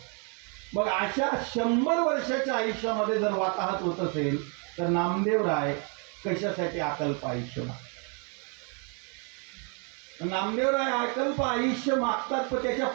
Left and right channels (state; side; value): quieter; left; 37.2 dB